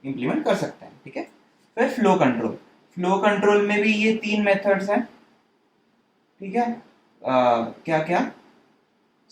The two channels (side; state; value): both; identical; correlation 1.00